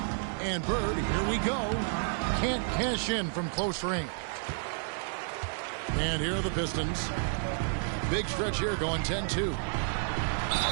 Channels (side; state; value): left; silent; 57 dB below the other